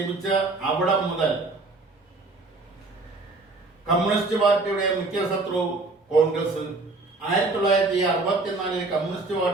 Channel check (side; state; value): left; quieter; 3.4 dB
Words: അവിടെ മുതൽ കമ്മ്യൂണിസ്റ്റ് പാർട്ടിയുടെ മുഖ്യ ശത്രു കോൺഗ്രസ്. 1964 കമ്മ്യൂണിസ്റ്റ്